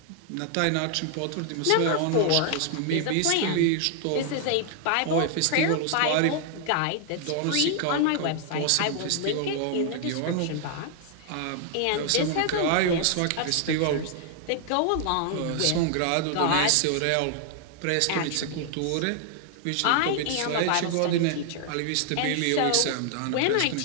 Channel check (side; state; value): both; different; correlation 0.00